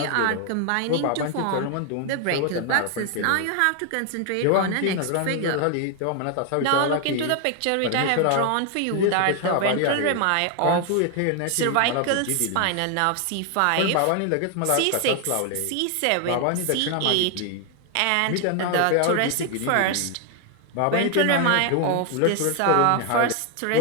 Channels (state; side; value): different; both; correlation 0.00